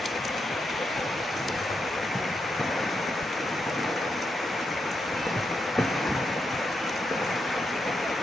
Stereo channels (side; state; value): both; normal; correlation 0.83